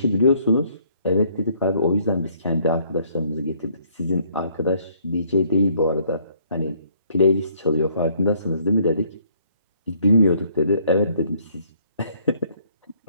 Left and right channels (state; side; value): inverted; both; correlation -0.65